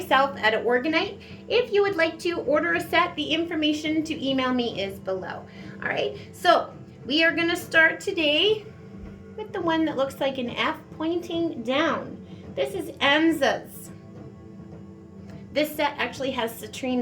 at Organite. If you would like to order a set, the information to email me is below. Alright, so we are going to start today with the one that looks like an F pointing down. This is Ansuz. This set actually has citrine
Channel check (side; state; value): both; identical; correlation 1.00